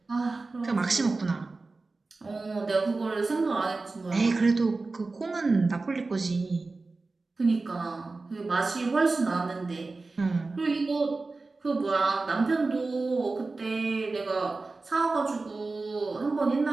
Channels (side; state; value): left; quieter; 3.6 dB